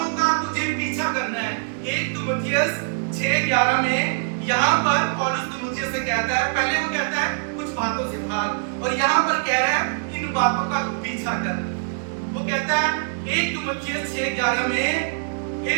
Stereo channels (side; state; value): left; silent; digital silence